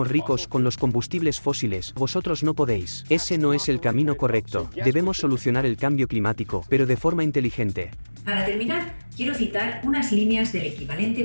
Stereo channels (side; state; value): both; inverted; correlation -1.00